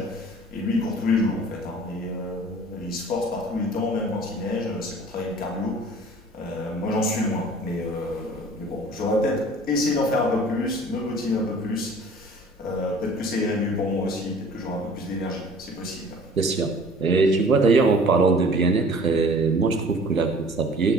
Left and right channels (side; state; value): both; normal; correlation 0.49